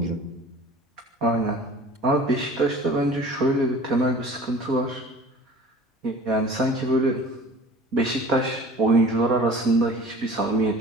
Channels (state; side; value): normal; both; correlation 0.44